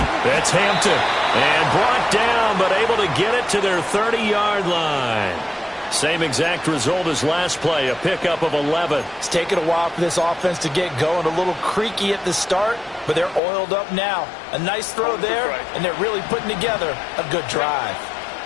That's Hampton. And brought down, but able to get it to their 30-yard line. Same exact result as last play, a pickup of 11. It's taken a while for this offense to get going. A little creaky at the start, but they're oiled up now. A nice throw there, and they're really putting together a good drive.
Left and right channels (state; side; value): drops out; right; at 13.4 s